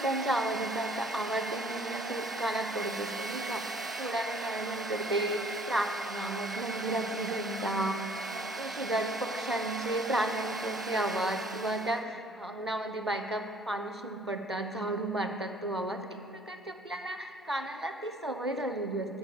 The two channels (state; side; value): normal; both; correlation 0.56